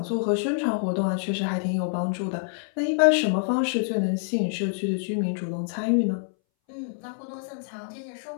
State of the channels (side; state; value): right; silent; 61 dB below the other